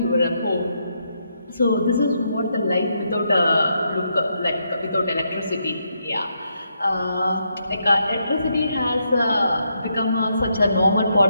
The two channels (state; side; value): inverted; both; correlation -0.79